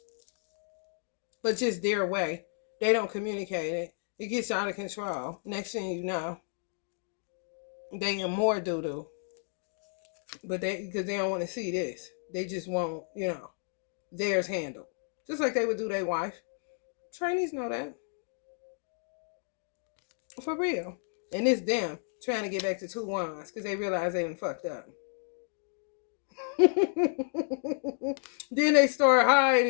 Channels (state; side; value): silent; right; 57 dB below the other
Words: But just their way. They don't communicate it. It gets out of control. Next thing you know, they in more doo-doo. But because they don't want to see this. They just want, theirs handled. Just like they would do their wife. Trainees know that. For real. And it's them trying to get back to 2 wands because they realize they done fucked up. Then they start